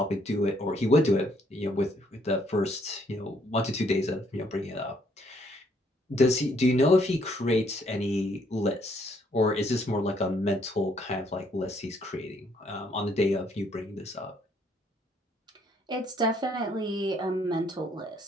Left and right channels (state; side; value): normal; both; correlation 0.68